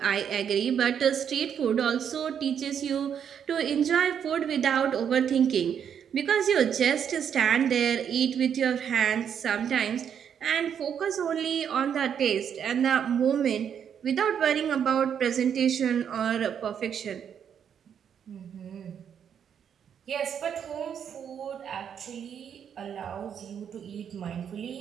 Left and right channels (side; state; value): left; quieter; 8.2 dB